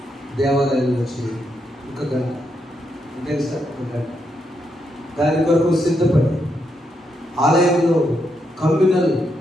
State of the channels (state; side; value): normal; both; correlation 0.80